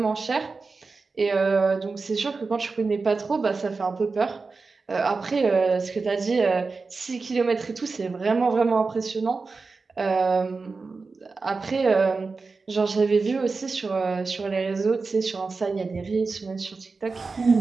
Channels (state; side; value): quieter; left; 4.2 dB